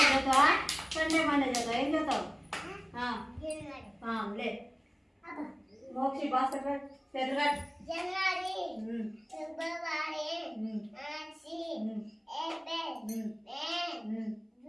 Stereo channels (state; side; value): identical; both; correlation 1.00